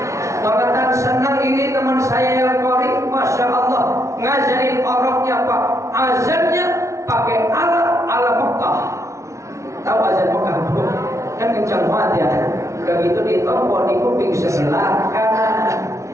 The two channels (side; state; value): left; late; 0.14 ms